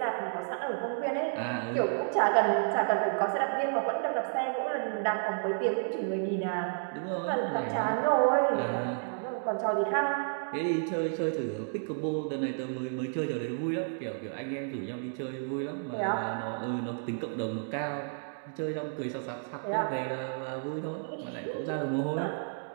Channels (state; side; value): silent; left; digital silence